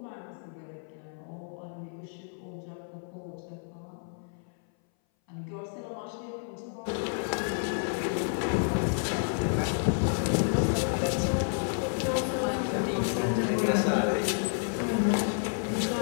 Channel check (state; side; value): silent; right; 58 dB below the other